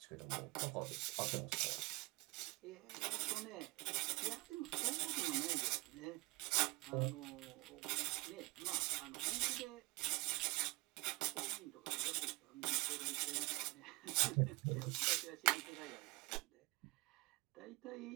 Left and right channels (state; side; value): quieter; left; 23.0 dB